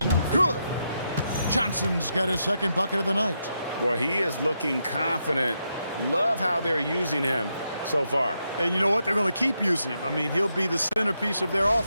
good. Johnson's got his second bucket of the night. Boy, he is looking confident. Love how they're using him so far. And you know what? They're going to keep using him. I mean, he'll be the centerpiece of their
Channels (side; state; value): both; inverted; correlation -0.82